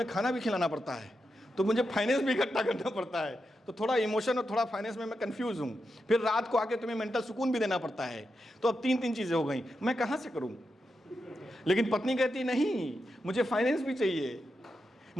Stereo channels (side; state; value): both; normal; correlation 0.87